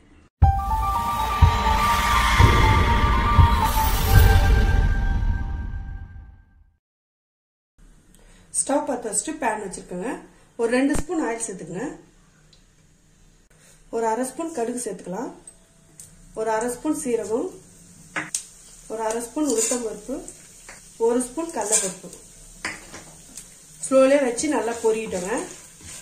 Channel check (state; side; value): identical; both; correlation 1.00